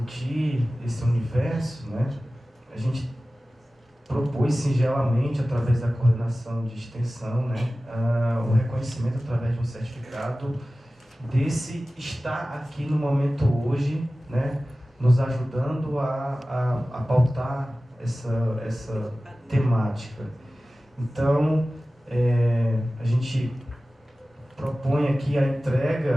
esse universo, né, a gente propôs singelamente, através da coordenação de extensão, né, o reconhecimento através de um certificado desse estar aqui no momento hoje, né, nos ajudando a pautar essa temática. Então, a gente propõe aqui a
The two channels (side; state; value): both; normal; correlation 0.96